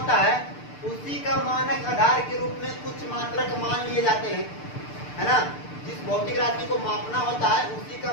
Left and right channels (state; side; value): late; right; 6.7 ms